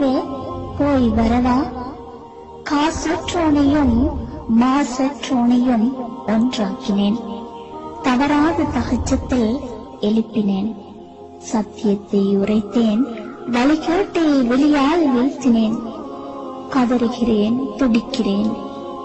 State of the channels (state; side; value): identical; both; correlation 1.00